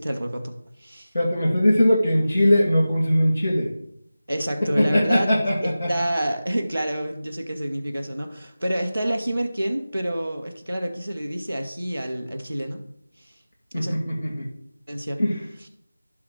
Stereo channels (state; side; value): inverted; both; correlation -0.96